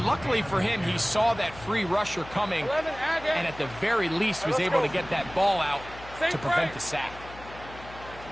luckily for him, he saw that free rusher coming, 11, and at the very least was able to get that ball out to prevent the sack.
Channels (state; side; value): noise; left; hum, 17 dB below the sound